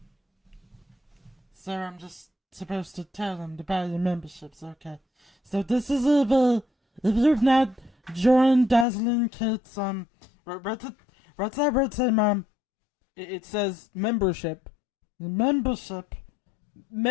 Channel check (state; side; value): drops out; right; at 8.8 s